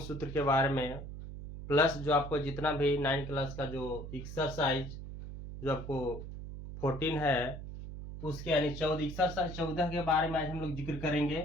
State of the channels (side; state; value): right; noise; hum, 9 dB below the sound